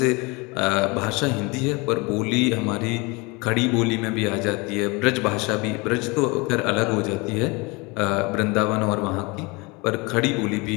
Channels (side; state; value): right; quieter; 26.8 dB